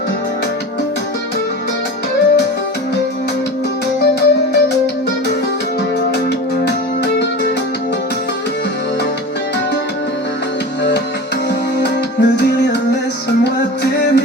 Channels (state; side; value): normal; both; correlation 0.32